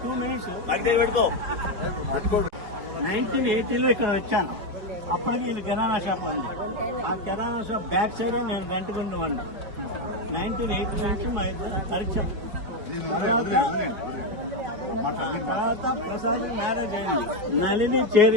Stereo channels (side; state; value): left; late; 4.8 ms